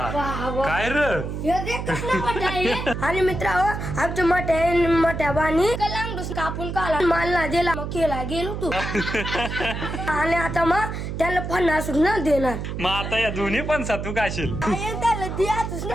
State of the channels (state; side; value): noise; right; hum, 5 dB below the sound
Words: काय रे हे देख कसला मोठा आहे. आणि मित्र आमच्या मोठ्या बाणी कलांगडूस कापून काला मालला दिला मग केला गेलो तू आणि आता मग त्याला फणस न देणार. मग आता या दोन्ही पण सातू काशील त्याला द्याच